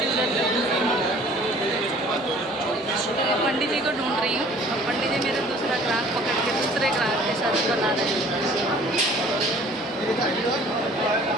उधर पंडित जी को ढूंढ रही हूँ। पंडित जी मेरे दूसरा ग्राहक पकड़ के दूसरे ग्राहक के साथ बना रहे हैं,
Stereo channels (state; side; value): normal; both; correlation 0.52